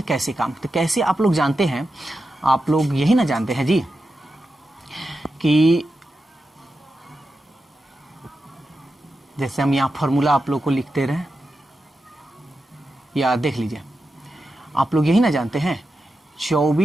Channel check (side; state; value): both; normal; correlation 0.90